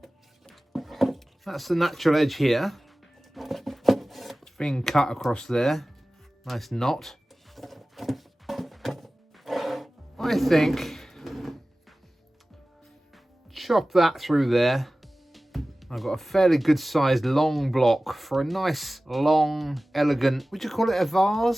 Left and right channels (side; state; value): both; normal; correlation 0.97